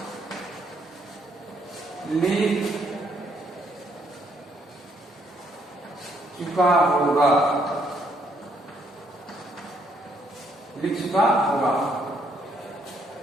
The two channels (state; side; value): normal; both; correlation 0.71